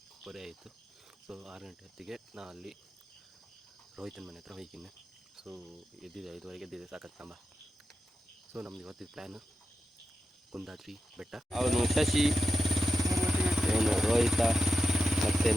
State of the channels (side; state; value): both; normal; correlation 0.88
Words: ಆಯಿತು. ಸೊ 6 ಗಂಟೆ ಹೊತ್ತಿಗೆ ನಾನು ಅಲ್ಲಿ ರೋಹಿತನ ಮನೆ ಹತ್ರ ಹೋಗಿದ್ದೀನಿ. ಸೊ ಎದ್ದಿದೆ 5:15 ಎದ್ದಿದೆ, ಸಾಕತ್ತಂಬ. ಸೊ ನಮ್ದು ಇವತ್ತಿನ ಪ್ಲ್ಯಾನು ಕುಂದಾದ್ರಿ ಬೆಟ್ಟ. ಅವನು ಶಶಿ, ಇವನು ರೋಹಿತ ಮತ್ತು